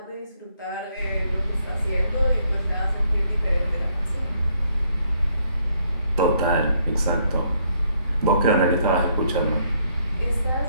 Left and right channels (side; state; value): both; inverted; correlation -0.70